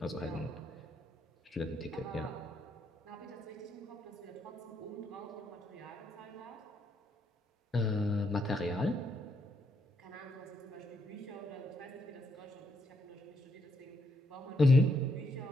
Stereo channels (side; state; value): both; normal; correlation 0.76